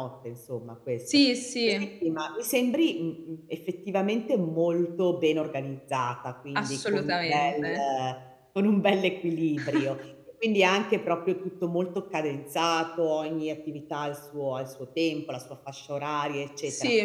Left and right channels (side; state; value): both; identical; correlation 1.00